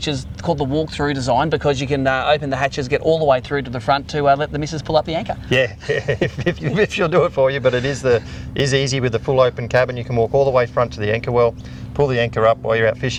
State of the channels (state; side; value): identical; both; correlation 1.00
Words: called the walk-through design, because you can open the hatches, get all the way through to the front to let the missus pull up the anchor. Yeah, if she'll do it for you, but it is easy with the full open cabin. You can walk all the way front to the anchor well, pull the anchor up while you're out